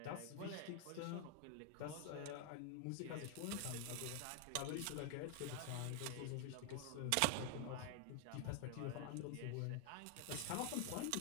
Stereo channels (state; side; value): different; both; correlation 0.00